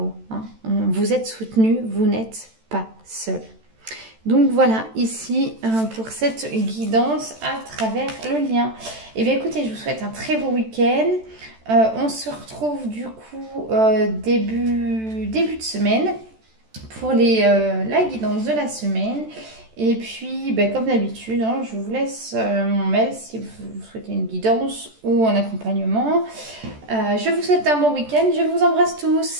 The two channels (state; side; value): late; left; 14 ms